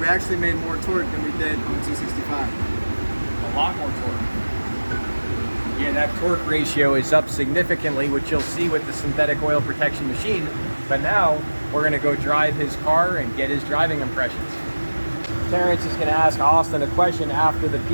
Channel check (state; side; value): inverted; both; correlation -1.00